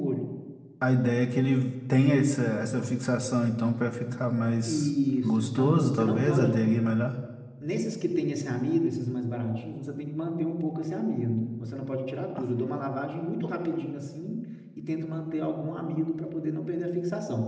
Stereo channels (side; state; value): both; identical; correlation 1.00